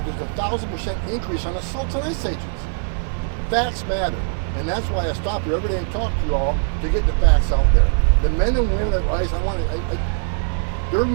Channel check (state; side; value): silent; left; 56 dB below the other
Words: 1,000% increase on assaults on ICE agents. Facts matter. And that's why I stop here every day and talk to you all to get the facts out there. The men and women at ICE, they're